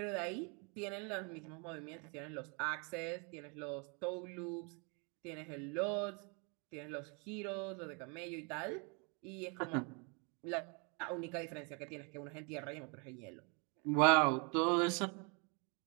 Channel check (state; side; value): quieter; left; 34.1 dB